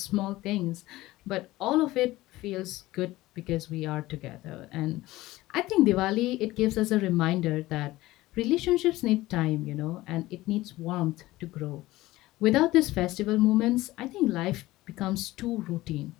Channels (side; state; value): right; quieter; 17.8 dB